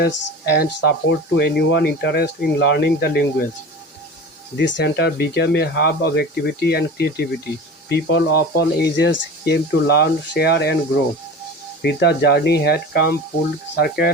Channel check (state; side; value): normal; both; correlation 0.34